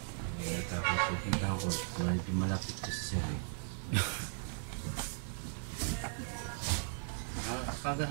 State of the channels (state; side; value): silent; left; digital silence